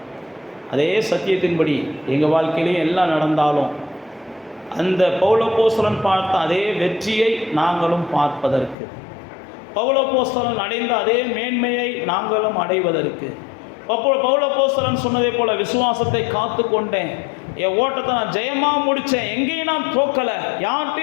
அதே சத்தியத்தின்படி எங்கள் வாழ்க்கையிலையும் எல்லாம் நடந்தாலும் அந்த பவுல் அப்போஸ்தலன் பார்த்த அதே வெற்றியை நாங்களும் பார்ப்பதற்கு, பவுல் அப்போஸ்தலன் அடைந்த அதே மேன்மையை நாங்களும் அடைவதற்கு, பவுல் அப்போஸ்தலன் சொன்னதை போல விசுவாசத்தை காத்து கொண்டேன், என் ஓட்டத்தை நான் ஜெயமாக முடித்தேன், எங்கேயும் நான் தோக்கலை,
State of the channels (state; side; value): drops out; right; at 8.8 s